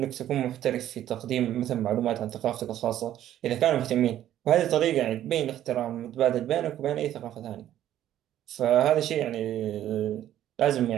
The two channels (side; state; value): left; quieter; 12.0 dB